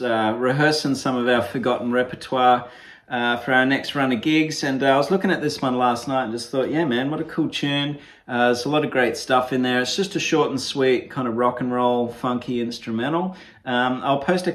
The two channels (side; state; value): both; identical; correlation 1.00